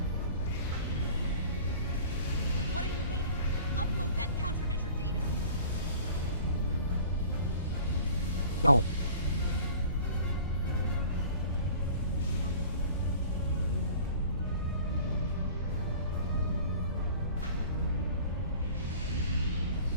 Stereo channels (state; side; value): inverted; both; correlation -0.45